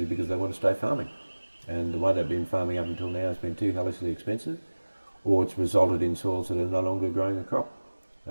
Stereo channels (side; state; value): both; inverted; correlation -1.00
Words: because they want to stay farming. And the way they've been farming up until now has been too hellishly expensive, or it's resulted in soils that are no longer growing a crop